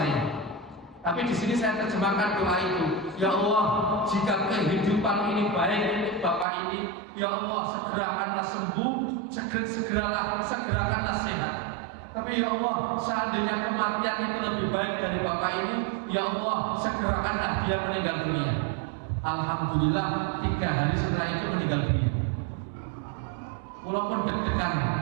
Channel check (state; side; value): drops out; left; at 6.5 s